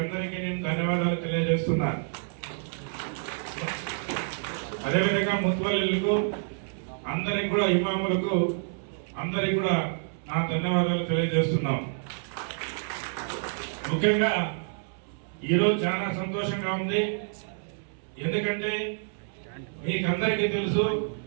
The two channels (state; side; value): silent; left; 59 dB below the other